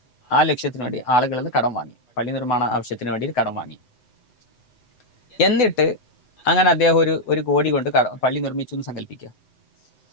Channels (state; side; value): late; right; 8.0 ms